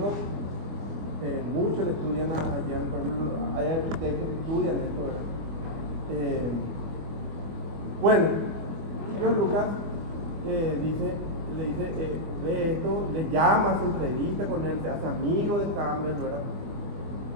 Muchos le estudian a Jung, por ejemplo, hay arquitectos que estudian esto, ¿verdad? Bueno, y John Lucas le dice, ve esto, le llama, se entrevista con él, se hace amigo de Campbell, ¿verdad?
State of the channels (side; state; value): left; late; 24 ms